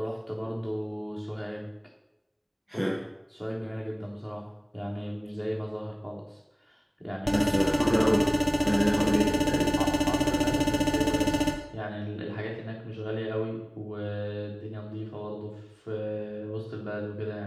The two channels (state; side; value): identical; both; correlation 1.00